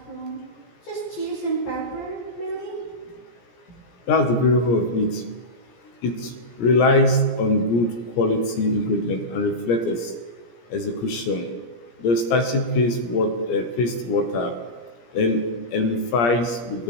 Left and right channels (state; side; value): late; right; 17 ms